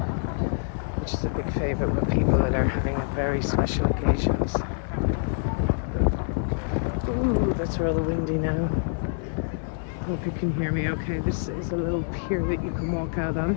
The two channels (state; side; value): silent; right; 61 dB below the other